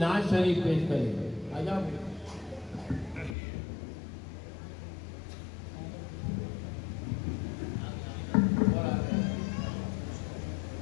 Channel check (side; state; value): right; drops out; at 3.4 s